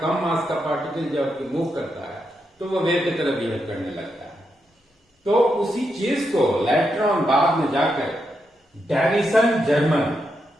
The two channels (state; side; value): normal; both; correlation 0.83